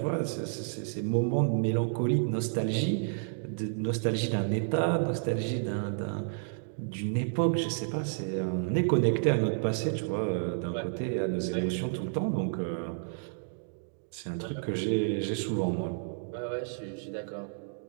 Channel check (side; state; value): left; silent; digital silence